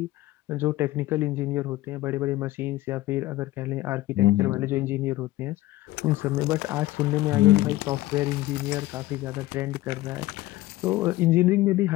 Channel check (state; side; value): quieter; right; 16.9 dB